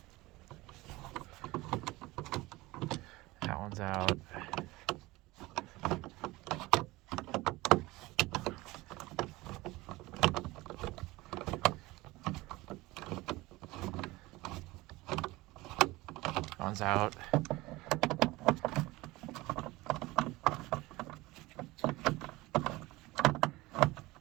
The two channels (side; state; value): left; quieter; 20.3 dB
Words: That one's out. That one's out.